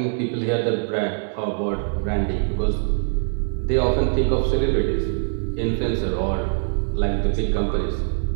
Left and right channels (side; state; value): left; silent; digital silence